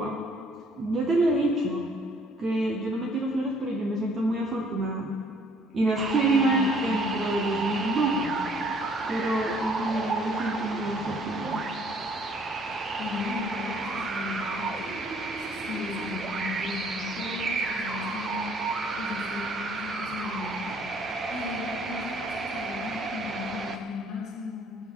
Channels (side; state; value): both; normal; correlation 0.61